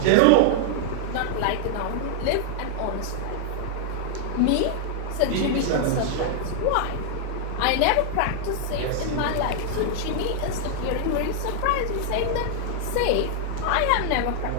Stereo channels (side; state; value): both; different; correlation -0.01